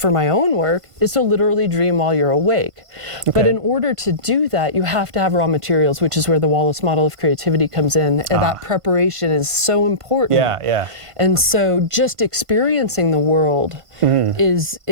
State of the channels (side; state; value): left; late; 1.5 ms